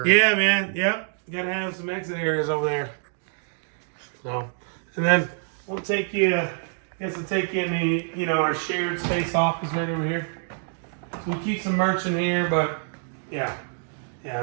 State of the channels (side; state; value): left; silent; 61 dB below the other